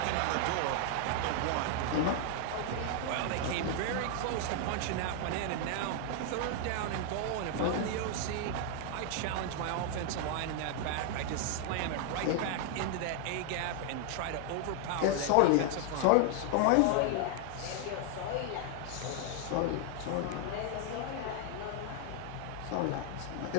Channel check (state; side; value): different; both; correlation 0.00